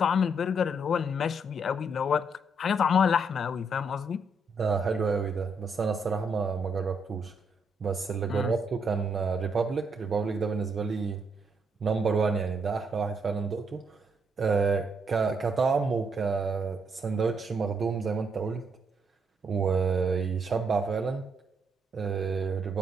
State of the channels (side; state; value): both; normal; correlation 0.74